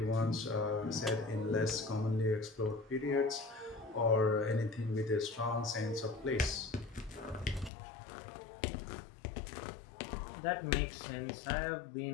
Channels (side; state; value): right; drops out; at 7.7 s